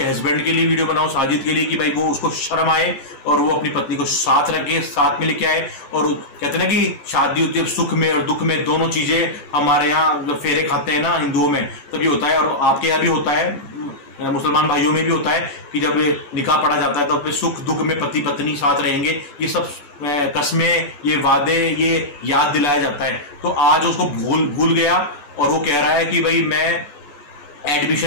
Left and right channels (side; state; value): right; late; 15 ms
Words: हस्बैंड के लिए वीडियो बनाओ, साजिद के लिए, कि भाई वो उसको शर्म आए और वो अपनी पत्नी को साथ रखे, साथ में लेके आए। और कहते हैं ना कि शादी होती है सुख में और दुख में, दोनों चीजें हमारे यहाँ फेरे खाते हैं ना हिंदुओं में, तभी होता है। और आपके यहाँ भी होता है, मुसलमान भाइयों में भी होता है कि जब निकाह पढ़ा जाता है तो फिर सुख दुख में पति पत्नी साथ रहेंगे, ये सब कस्में, ये वादे, ये याद दिलाया जाता है। तो आज उसको भूल गया और वो कह रहा है कि भाई मैं